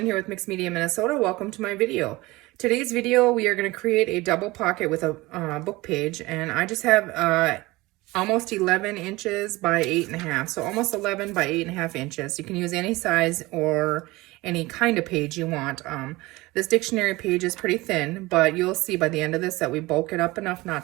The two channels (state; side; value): quieter; left; 20.9 dB